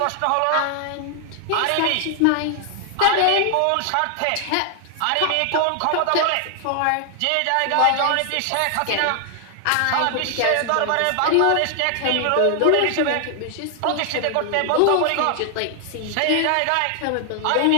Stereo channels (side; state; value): both; different; correlation 0.00